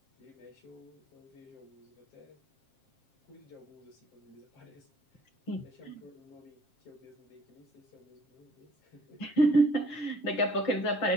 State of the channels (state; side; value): late; right; 7.5 ms